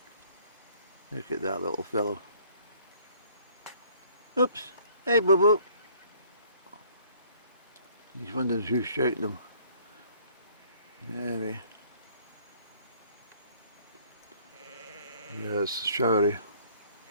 Look at that little fellow. Oops. Hey, boo boo. He's wondering who's shouting him. Anyway. Yes, showery.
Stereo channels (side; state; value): both; inverted; correlation -0.59